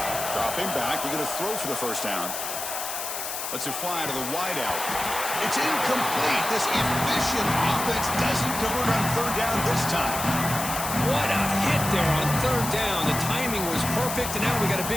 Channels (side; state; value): left; noise; hiss, 5 dB below the sound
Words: Dropping back, looking to throw for the first down. Lets it fly to the wideout. It's incomplete. This efficient offense doesn't convert on 3rd down this time. What a hit there on 3rd down. The timing was perfect, and now we got a